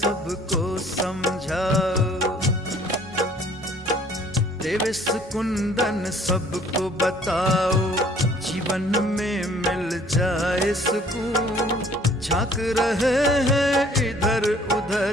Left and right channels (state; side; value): normal; both; correlation 0.57